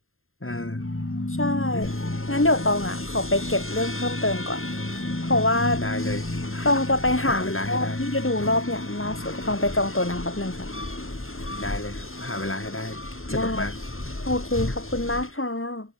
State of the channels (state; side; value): late; right; 0.61 ms